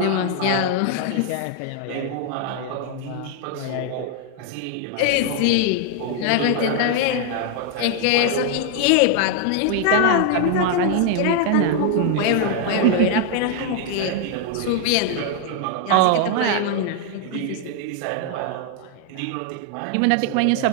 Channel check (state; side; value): different; both; correlation 0.00